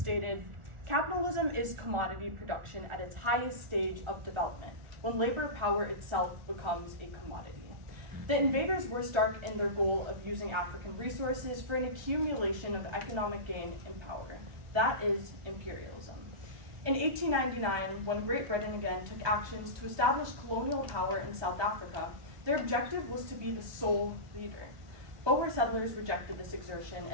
"Capitalism is commodity production at its highest stage of development, when labor power itself becomes a commodity." The invaders were stark in their goal of using African resources for an accumulation of economic gain and power. That is imperialism. In 1899, when Great Britain again took actions to establish colonial power in South Africa, their objective was to be the sole leader. Boer settlers rejected this exertion,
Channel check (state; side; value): late; left; 1.4 ms